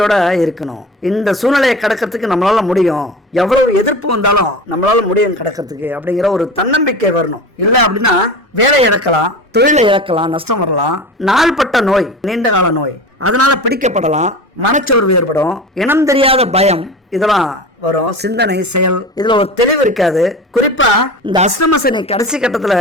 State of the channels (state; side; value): normal; both; correlation 0.32